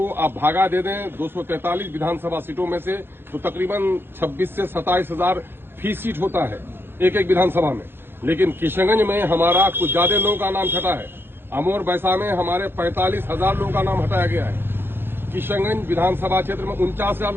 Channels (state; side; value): late; left; 0.10 ms